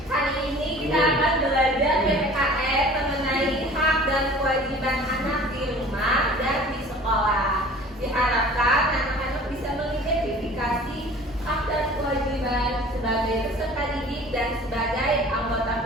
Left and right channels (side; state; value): both; normal; correlation 0.46